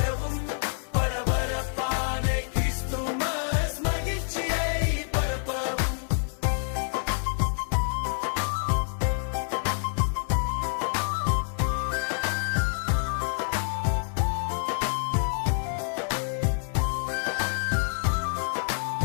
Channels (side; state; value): right; silent; 56 dB below the other